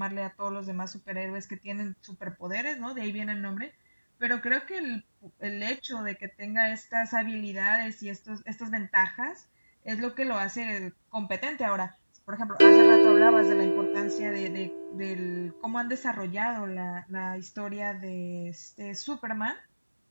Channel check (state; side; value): inverted; both; correlation -1.00